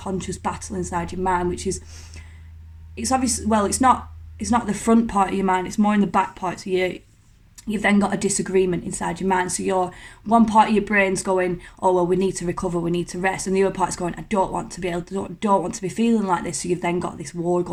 battle inside your mind, which is it's obvious, well, it's not the front part of your mind, it's more in the back part. So you've then got a disagreement inside your mind. So your one part of your brain's going, oh well, we need to recover, we need to rest, and the other part's going, I don't want to be feeling like this. So you've then got this war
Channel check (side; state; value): both; identical; correlation 1.00